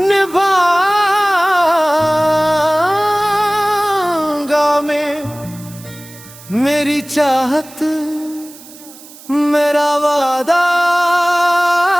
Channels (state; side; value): noise; right; hiss, 20 dB below the sound